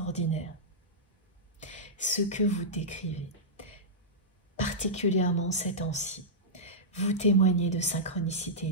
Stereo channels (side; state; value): both; normal; correlation -0.13